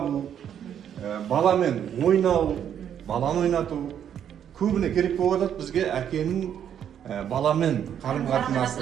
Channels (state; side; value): quieter; left; 9.2 dB